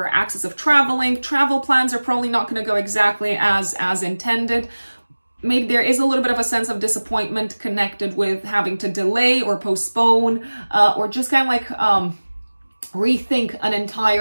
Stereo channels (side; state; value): both; inverted; correlation -1.00